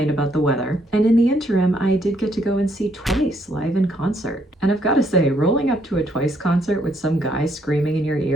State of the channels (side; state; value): both; normal; correlation 0.71